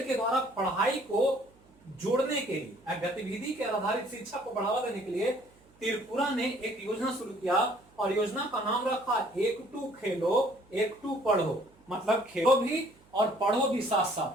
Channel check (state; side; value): noise; right; hum, 29 dB below the sound